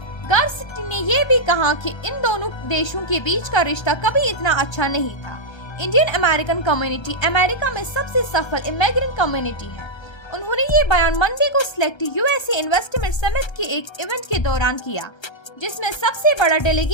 गारसिटी ने यह भी कहा कि इन दोनों देशों के बीच का रिश्ता कभी इतना अच्छा नहीं था। इंडियन अमेरिकन कम्युनिटी अमेरिका में सबसे सफल इमिग्रेंट कम्युनिटी है। उन्होंने ये बयान मंडे को सिलेक्ट यूएसए इन्वेस्टमेंट समिट के एक इवेंट के दौरान किया, जिसमें सबसे बड़ा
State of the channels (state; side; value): late; right; 1.3 ms